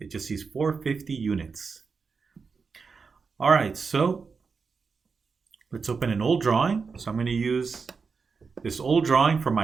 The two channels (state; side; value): quieter; left; 5.1 dB